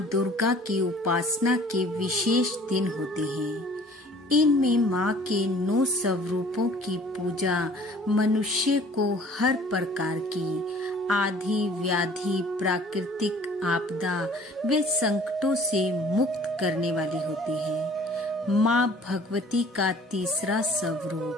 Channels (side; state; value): both; normal; correlation 0.51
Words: दुर्गा की उपासना के विशेष दिन होते हैं। इनमें माँ के 9 स्वरूपों की पूजा मनुष्य को हर प्रकार की आधि व्याधि, प्राकृतिक आपदा व संकटों से मुक्त करने वाली होती है। माँ भगवती का तीसरा